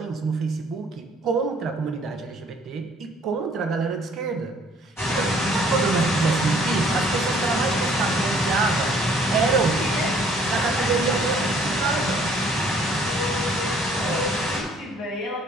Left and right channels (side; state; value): both; normal; correlation 0.59